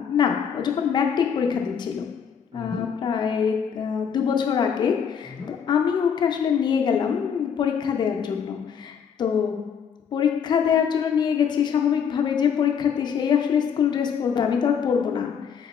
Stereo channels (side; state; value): right; quieter; 7.3 dB